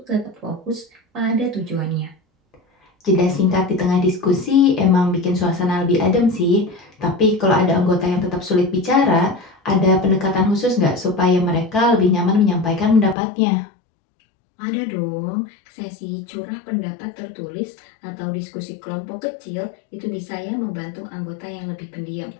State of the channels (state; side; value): drops out; right; at 13.2 s